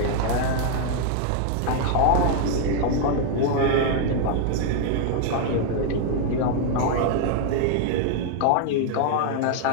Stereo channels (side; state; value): both; different; correlation 0.00